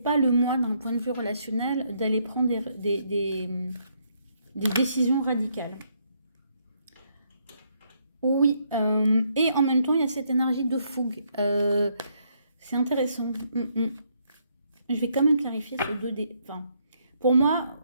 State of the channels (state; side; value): inverted; both; correlation -0.73